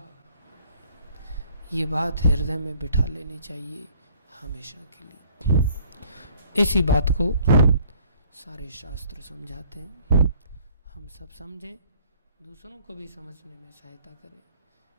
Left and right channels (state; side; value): inverted; both; correlation -0.58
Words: ये बात हृदय में बिठा लेनी चाहिए हमेशा के लिए। इसी बात को सारे शास्त्र समझाते हैं, हम सब समझें, दूसरों को भी समझने में सहायता करें,